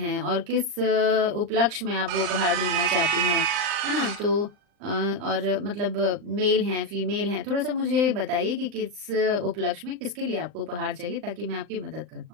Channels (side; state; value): left; late; 39 ms